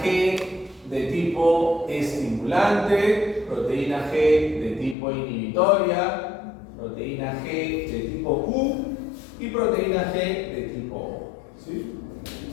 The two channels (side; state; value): right; drops out; at 5.0 s